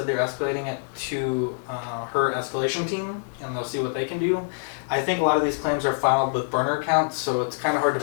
they're escalating it to her escalation team, and they'll see what they can do. I think a lot of these claims are filed with burner accounts, so it's kind of hard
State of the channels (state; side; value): silent; right; digital silence